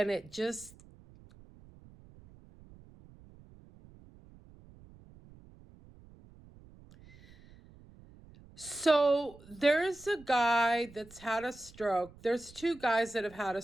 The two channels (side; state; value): right; noise; rumble, 23 dB below the sound